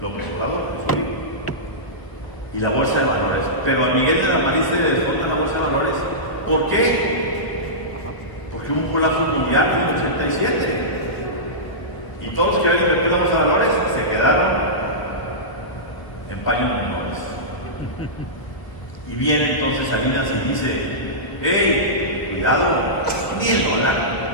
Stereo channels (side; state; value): right; late; 1.2 ms